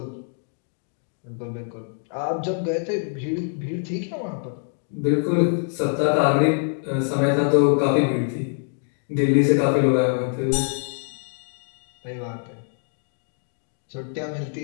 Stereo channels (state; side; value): silent; right; digital silence